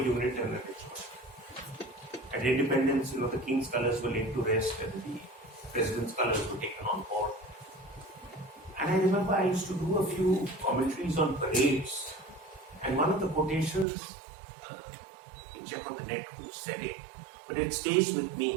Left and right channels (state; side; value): drops out; left; at 13.9 s